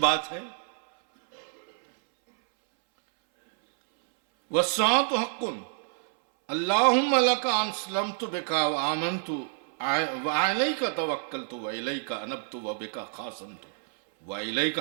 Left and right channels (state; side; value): silent; left; 60 dB below the other